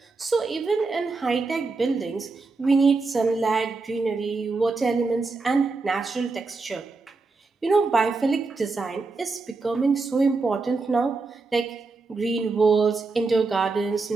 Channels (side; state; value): left; quieter; 3.9 dB